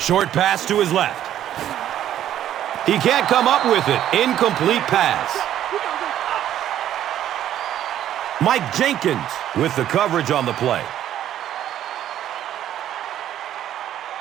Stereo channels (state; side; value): quieter; left; 11.4 dB